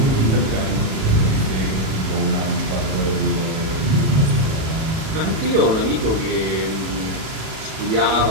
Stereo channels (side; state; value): left; late; 37 ms